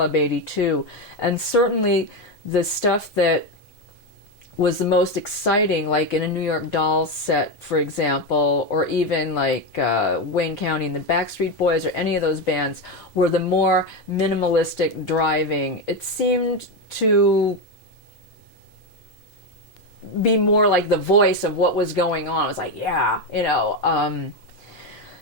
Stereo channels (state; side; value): normal; both; correlation 0.11